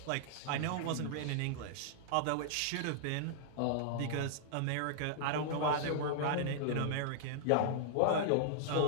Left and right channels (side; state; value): both; different; correlation -0.01